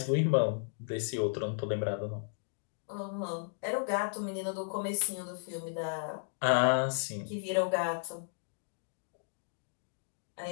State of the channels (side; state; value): right; silent; digital silence